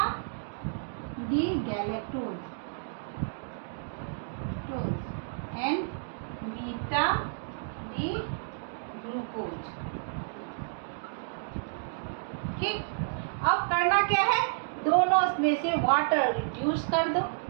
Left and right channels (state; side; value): silent; left; digital silence